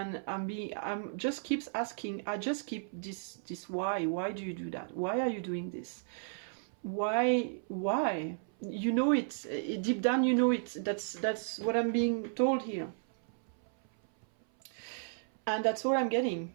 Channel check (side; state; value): left; silent; 55 dB below the other